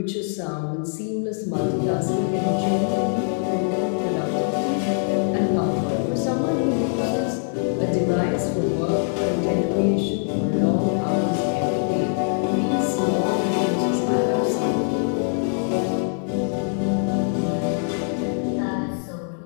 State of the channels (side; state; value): right; silent; 63 dB below the other